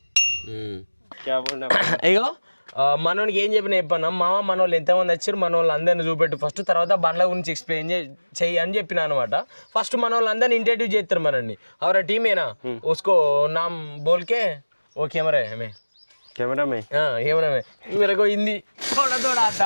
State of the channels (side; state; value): both; inverted; correlation -1.00